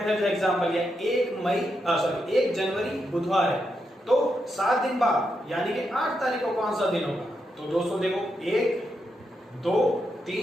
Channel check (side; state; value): both; normal; correlation 0.83